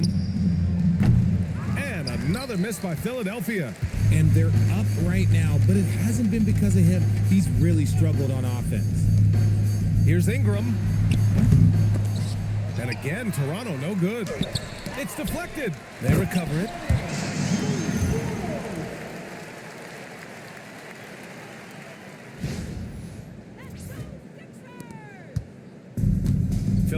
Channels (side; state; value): both; identical; correlation 1.00